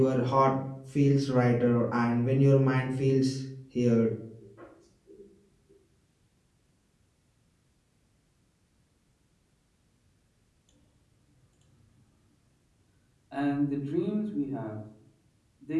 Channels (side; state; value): both; identical; correlation 1.00